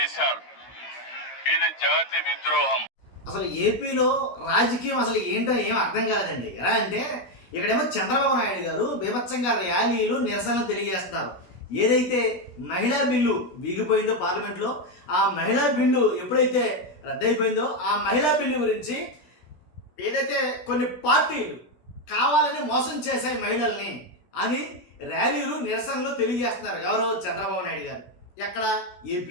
ఇది జాతి విద్రోహం. అసలు ఏపీలో రాజకీయం అసలు ఏంటో ఏం అర్థం కాలేదండి. ఎలా అంటే ఇక్కడేమో చంద్రబాబు నాయుడు గారు బీభత్సంగా ర్యాలీలు నిరసనలు తెలియజేస్తున్నారు. ఏదైతే మహిళా బిల్లు వీగిపోయిందో పార్లమెంట్లో, ఆ మహిళా బిల్లు ఎప్పుడైతే రద్దయిపోయిందో ఆ మహిళా బిల్లు గురించి ఏదైతే కొన్ని పార్టీలు కావాలని మోసం చేశాయి మహిళల్ని అని ర్యాలీలు నిరసనలు తెలియజేస్తున్నారు. ఎవరో చంద్రబాబు నాయుడు గారు. ఎక్కడ?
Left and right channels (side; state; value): right; late; 16 ms